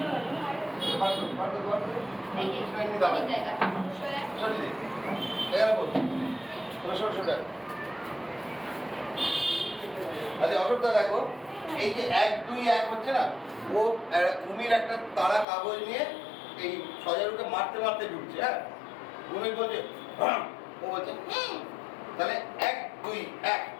আচ্ছা অশোকদা দেখো, এই যে 1 2 1 হচ্ছে না, ও কুমির একটা তাড়া কাগজ নিয়ে এই সজারুকে মারতে মারতে ঢুকছে। হ্যাঁ, কুমির বলছে ও বলছে তাহলে 1 2 1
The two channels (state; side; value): drops out; right; at 15.5 s